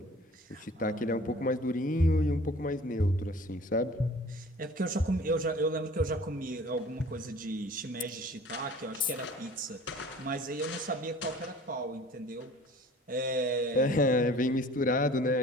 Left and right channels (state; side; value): normal; both; correlation 0.47